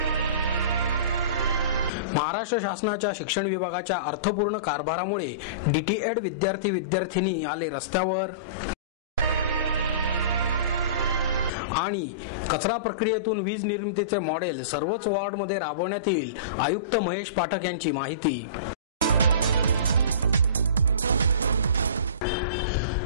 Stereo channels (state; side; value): inverted; both; correlation -0.35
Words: महाराष्ट्र शासनाच्या शिक्षण विभागाच्या अर्थपूर्ण कारभारामुळे डीटीएड विद्यार्थी-विद्यार्थिनी आले रस्त्यावर। आणि कचरा प्रक्रियेतून वीज निर्मितीचे मॉडेल सर्वच वॉर्डमध्ये राबवण्यात येईल, आयुक्त महेश पाठक यांची माहिती।